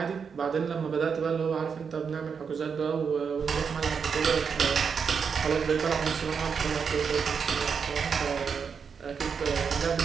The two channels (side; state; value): left; quieter; 6.2 dB